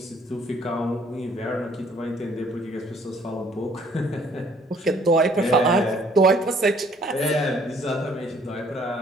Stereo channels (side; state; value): both; normal; correlation 0.61